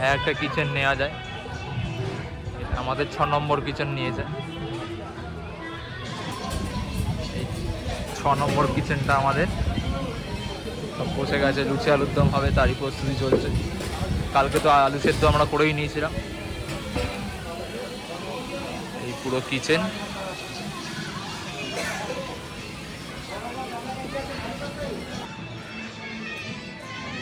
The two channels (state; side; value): identical; both; correlation 1.00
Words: একটা কিচেন নেওয়া যায়। আমাদের 6 নম্বর কিচেন নিয়েছে, এই 6 নম্বর কিচেনটা আমাদের। সব বসে গেছে, লুচি আলুর দম হবে, তারই প্রস্তুতি চলছে। কালকে তো আলু সেদ্ধ আমরা করেই নিয়েছিলাম। এই পুরো কিচেন,